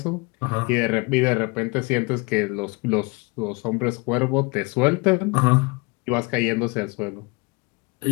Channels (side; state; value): right; quieter; 27.6 dB